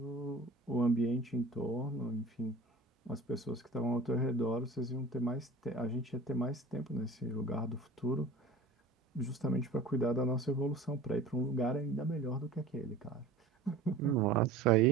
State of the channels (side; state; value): left; quieter; 3.0 dB